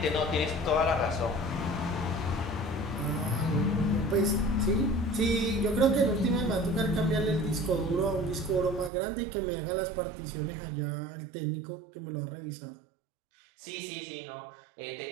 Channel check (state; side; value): drops out; left; at 8.9 s